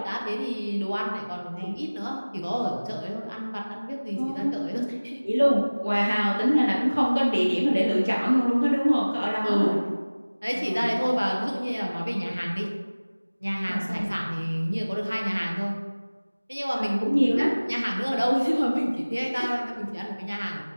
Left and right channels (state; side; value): inverted; both; correlation -1.00